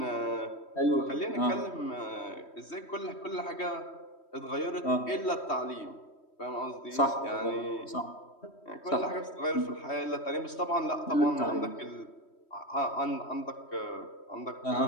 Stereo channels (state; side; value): late; right; 3.1 ms